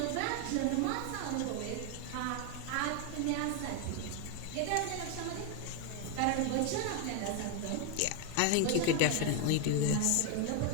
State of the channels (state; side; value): different; both; correlation 0.01